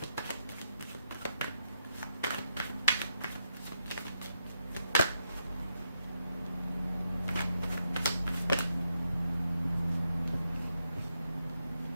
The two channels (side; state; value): both; inverted; correlation -0.82